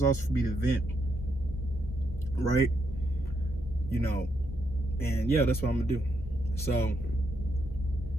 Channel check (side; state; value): both; normal; correlation 0.79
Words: also for me to vent, right? And yeah, that's what I'm gonna do. So,